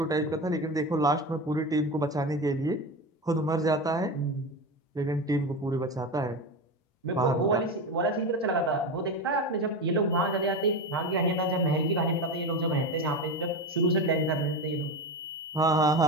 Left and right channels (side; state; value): both; normal; correlation 0.22